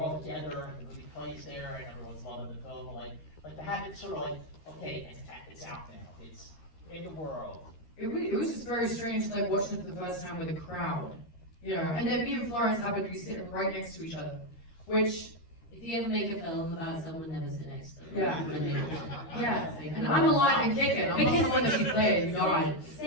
together, and the movie plays there, and everyone's loving the film, like to have it sort of like, okay, it's out now, it's in the world. It was just very strange, like watching it for the first time with a crowd, you know. And then me and Florence happened to be sitting right next to each other, which, If you ever make a film about someone, never sit next to them. Yeah. yeah. And I'm alive and kicking. I'm not the one that she played. God.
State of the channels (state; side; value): late; right; 13 ms